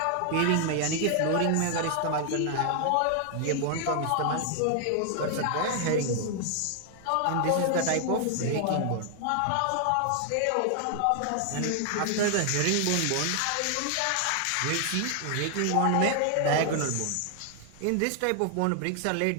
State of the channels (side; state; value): both; different; correlation 0.00